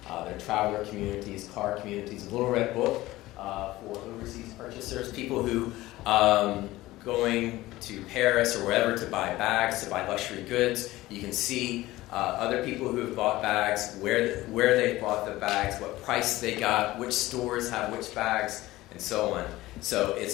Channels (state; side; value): quieter; right; 17.6 dB